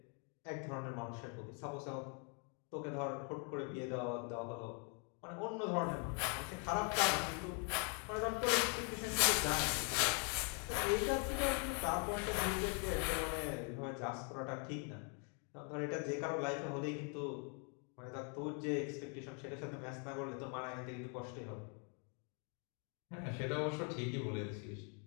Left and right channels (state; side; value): quieter; right; 38.9 dB